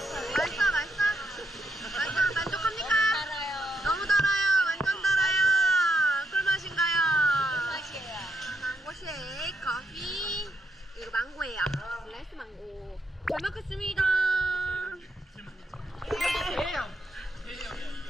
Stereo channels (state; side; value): normal; both; correlation 0.80